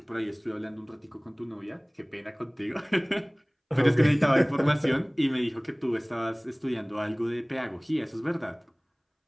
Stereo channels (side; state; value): both; identical; correlation 1.00